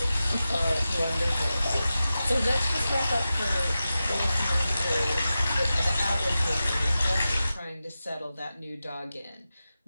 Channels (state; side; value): inverted; both; correlation -0.93